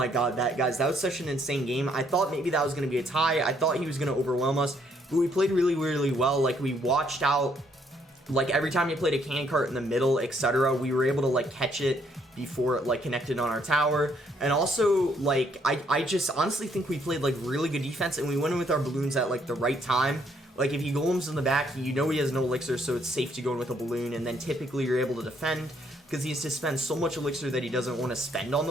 God, guys, that was such an insane game. I thought maybe that was going to be a tie. I thought he was going to overwhelm us, but we played really, really well. Like, we watched out, like, every time you played a cannon cart in the middle, etc., we were able to, like, catch it before it, like, connected on our tower. And also, like, I just honestly think we played, like, really good defense, and we went in with our balloons at, like, the right time. Like, if he golems in the back, you know he has no elixir, so it's safe to go in with a balloon, and then typically you're able to defend, because he has to spend so much elixir that he doesn't want to spend on the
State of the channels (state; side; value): normal; both; correlation 0.69